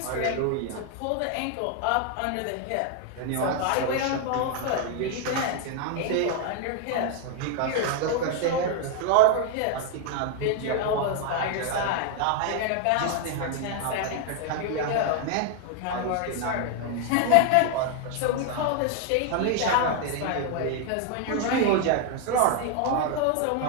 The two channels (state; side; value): different; both; correlation 0.00